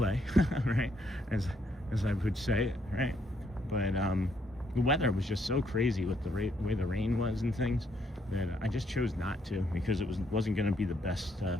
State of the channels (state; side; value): normal; both; correlation 0.73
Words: right? As I would say it, right? But the weather was just so crazy with the way the rain was and things, that I just chose not to, because it wasn't going to be the best